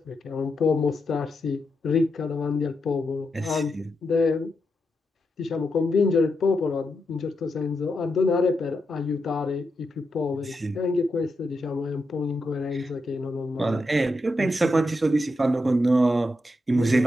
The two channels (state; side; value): normal; both; correlation 0.85